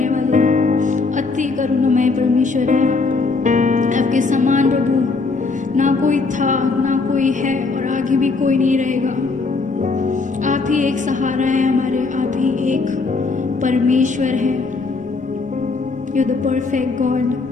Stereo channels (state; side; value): quieter; right; 4.0 dB